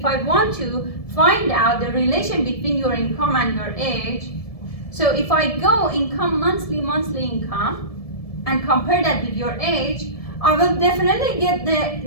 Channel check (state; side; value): late; right; 1.7 ms